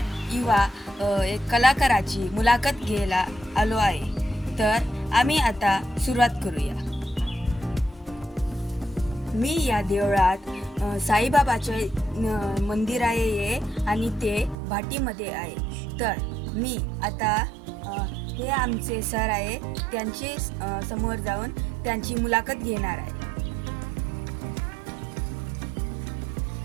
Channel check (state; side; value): drops out; left; at 14.6 s